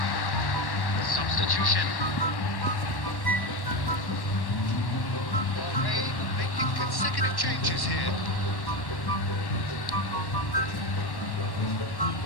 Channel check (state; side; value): late; right; 1.1 ms